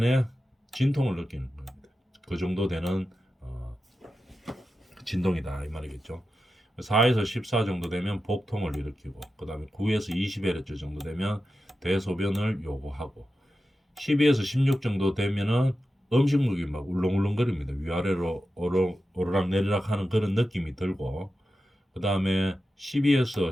진통을 느끼는 겁니다. 그 정도 되는 진동이다 이 말이겠죠. 4에서 14 정도 되면 복통을 일으키고 그 다음에 9에서 20Hz 정도 되면 대소변을 요구하고 12에서 16 정도 되면은 음식물이 막 울렁울렁거립니다. 위아래로 오르락 내리락 하는 그런 느낌이 들고 그 다음에 12에서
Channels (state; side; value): normal; both; correlation 0.91